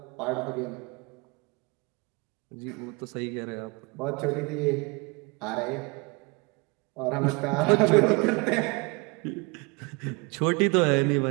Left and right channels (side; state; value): left; quieter; 28.2 dB